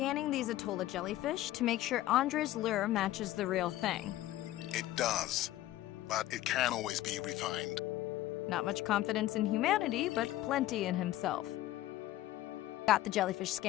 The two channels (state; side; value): quieter; right; 14.9 dB